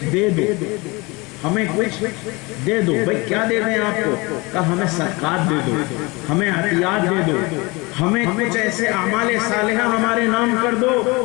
دے دو، ہمیں کچھ دے دو۔ بھئی کیا دے دیں آپ کو؟ کہا ہمیں صدقات دے دو، ہمیں عطیات دے دو، ہمیں کچھ ایسے اعمال صالحہ ہمارے نام کر دو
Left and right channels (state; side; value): quieter; right; 25.3 dB